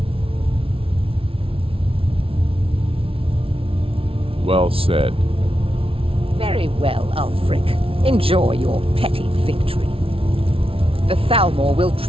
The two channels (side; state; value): left; late; 0.26 ms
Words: Well said. Very well, Ulfric. Enjoy your petty victory. The Thalmor will